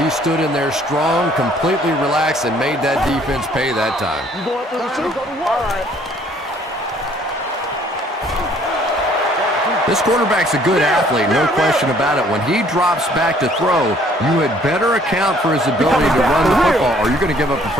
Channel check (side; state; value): both; normal; correlation 0.60